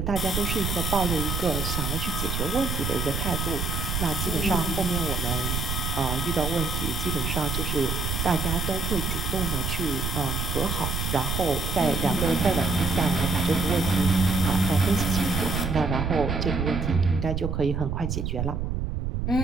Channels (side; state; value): right; noise; rumble, 2 dB below the sound